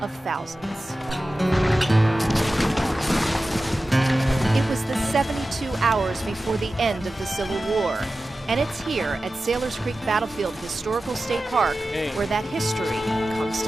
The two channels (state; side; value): normal; both; correlation 0.94